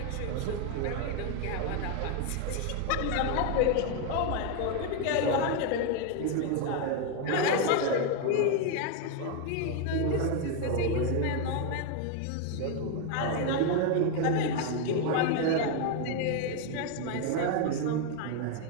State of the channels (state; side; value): different; both; correlation 0.01